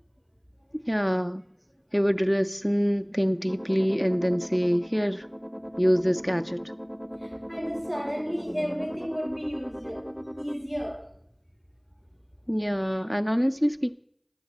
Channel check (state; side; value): identical; both; correlation 1.00